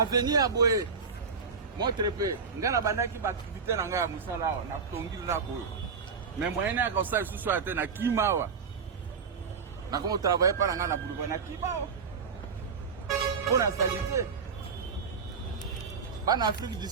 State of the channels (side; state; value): left; quieter; 5.5 dB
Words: boye montre pe ngana bandaki ba activité na ngaya musala na tongili na boye mais moyen ya ko sa susu ate na kimawa na ko travailler pa na boulevard na kimawa pour la santé bana Afrique du